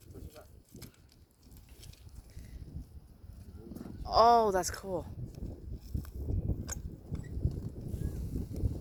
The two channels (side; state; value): both; identical; correlation 1.00